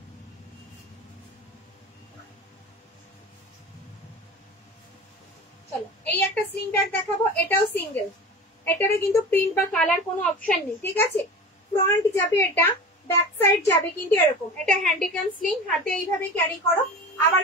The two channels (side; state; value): both; normal; correlation 0.33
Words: চলো এই একটা স্লিং ব্যাগ দেখাবো, এটাও সিঙ্গেল, এটারে কিন্তু প্রিন্ট বা কালার কোনো অপশন নেই, ঠিক আছে? ফ্রন্ট যাবে এটা, ব্যাক সাইড যাবে কিন্তু এরকম। এটা হ্যান্ডিক্যাম স্লিং, হাতে এইভাবে ক্যারি করো, আবার